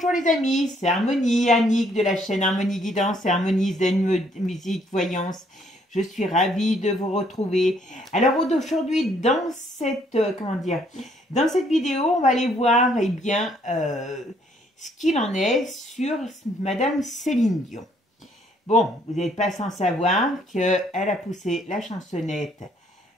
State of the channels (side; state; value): both; normal; correlation 0.66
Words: les amis, c'est Harmonie, Annick de la chaîne Harmonie Guidance et Harmonie Zen Musique Voyance. Je suis ravie de vous retrouver. Alors aujourd'hui, dans cette, dans cette vidéo, on va aller voir ce qu'il en est sur Madame Céline Dion. Bon, vous n'êtes pas sans savoir qu'elle a poussé la chansonnette